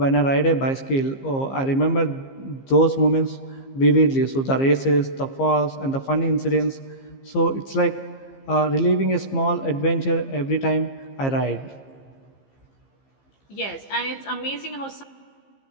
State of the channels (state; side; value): late; right; 15 ms